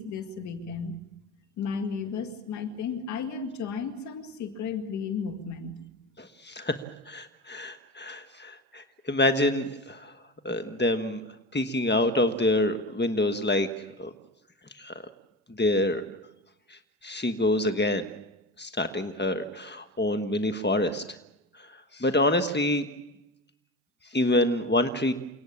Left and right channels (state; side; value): normal; both; correlation 0.27